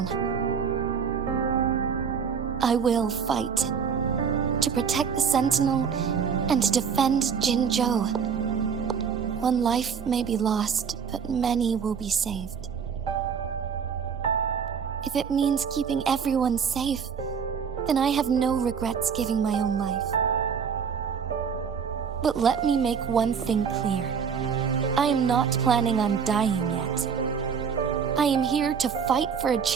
I will fight to protect the Sentinel and to defend Jinzhou. One life may be lost, but many will be saved. If it means keeping everyone safe, then I have no regrets giving my own life. But let me make one thing clear. I am not planning on dying yet. I am here to fight for a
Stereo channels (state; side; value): quieter; left; 6.7 dB